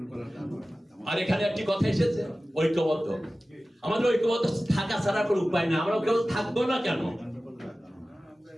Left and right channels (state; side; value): normal; both; correlation 0.96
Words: আর এখানে একটি কথা এসেছে, ঐক্যবদ্ধ। আমাদের ঐক্যবদ্ধ থাকা ছাড়া কোনো উপায় না, আমরা কেউ থাকবো না কেন?